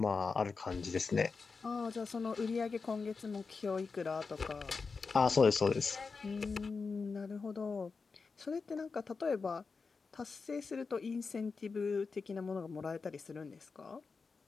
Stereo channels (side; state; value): right; quieter; 4.7 dB